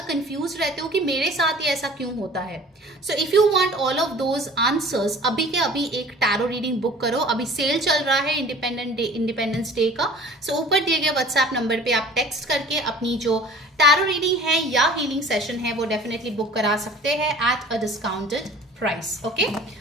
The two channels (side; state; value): both; normal; correlation 0.46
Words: कंफ्यूज रहते हो कि मेरे साथ ये ऐसा क्यों होता है। So if you want all of those answers, अभी के अभी एक टैरो रीडिंग बुक करो। अभी सेल चल रहा है इंडिपेंडेंस डे का। सो ऊपर दिए गए व्हाट्सएप नंबर पे आप टेक्स्ट करके अपनी जो टैरो रीडिंग है या हीलिंग सेशन है वो डेफिनेटली बुक करा सकते हैं at a discounted price. Okay,